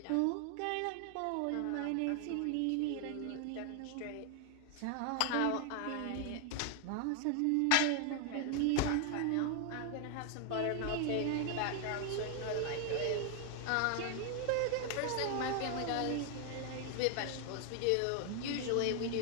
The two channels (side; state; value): both; different; correlation 0.00